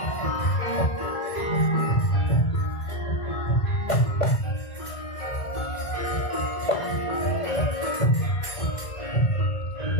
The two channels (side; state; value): right; late; 1.6 ms